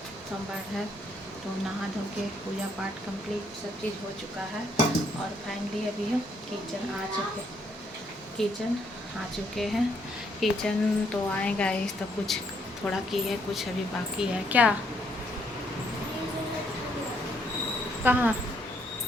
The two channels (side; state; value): both; normal; correlation 0.71